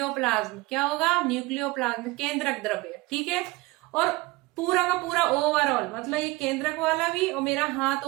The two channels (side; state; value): left; quieter; 22.1 dB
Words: क्या होगा? न्यूक्लियोप्लाज्म, केंद्रक द्रव्य, ठीक है। और पूरा का पूरा ओवरऑल, मतलब ये केंद्रक वाला भी और मेरा हाथ